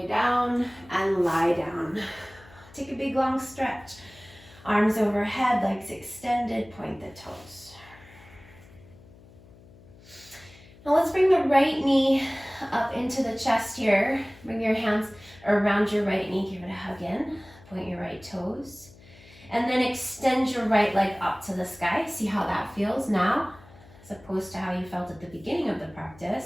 down and lie down. Take a big long stretch. Arms overhead, legs extended, point the toes. Now let's bring the right knee up into the chest here. Bring your hands around your right knee, give it a hug in. Point your right toes. And then extend your right leg up to the sky. See how that feels now, as opposed to how you felt at the beginning of the practice.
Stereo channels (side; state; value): left; noise; hum, 23 dB below the sound